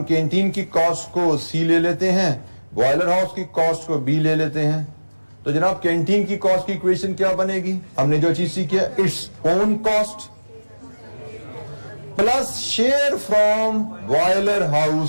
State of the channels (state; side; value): inverted; both; correlation -1.00